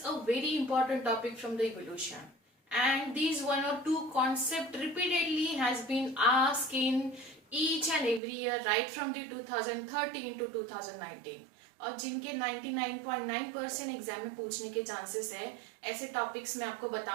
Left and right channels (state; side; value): drops out; left; at 8.2 s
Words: a very important topic from the evolution, and these one or two concept repeatedly has been asked in each and every year right from the 2013 to 2019 और जिनके 99.9% exam में पूछने के chances है, ऐसे topics मैं आपको